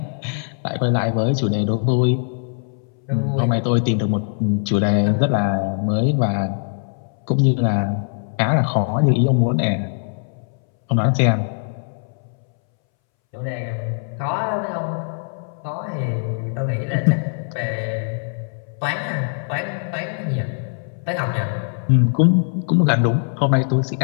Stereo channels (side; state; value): right; silent; 63 dB below the other